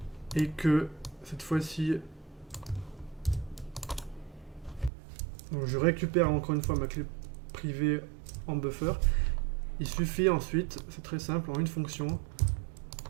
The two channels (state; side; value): drops out; left; at 4.9 s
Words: et que cette fois-ci je récupère encore une fois ma clé privée en buffer, il suffit ensuite, c'est très simple, en une fonction,